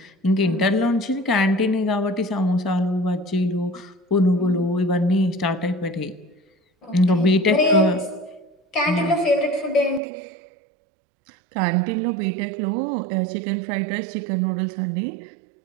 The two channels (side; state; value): left; drops out; at 10.0 s